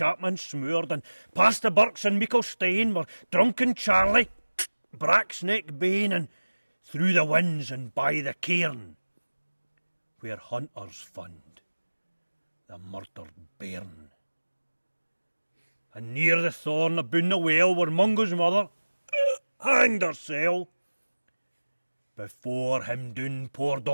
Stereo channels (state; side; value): inverted; both; correlation -1.00